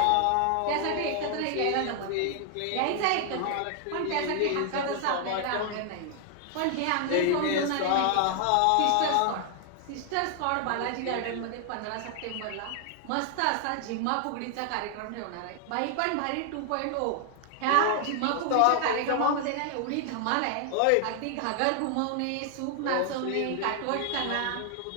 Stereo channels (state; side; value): different; both; correlation 0.00